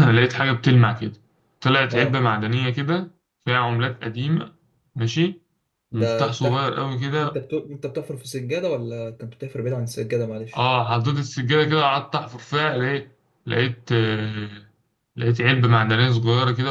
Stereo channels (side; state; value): both; identical; correlation 1.00